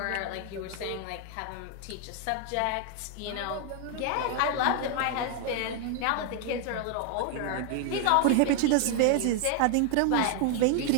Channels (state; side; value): different; both; correlation 0.00